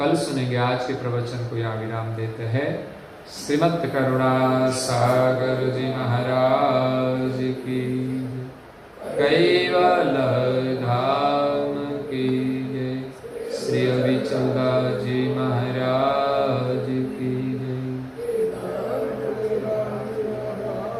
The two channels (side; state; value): both; identical; correlation 1.00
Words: सुनेंगे। आज के प्रवचन को यहाँ विराम देते हैं। श्रीमद् करुणा सागर जी महाराज की, कैवल धाम की जय। श्री अभिचंदा जी महाराज की जय।